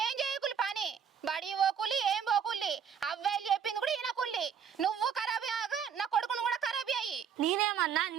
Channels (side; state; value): left; quieter; 7.6 dB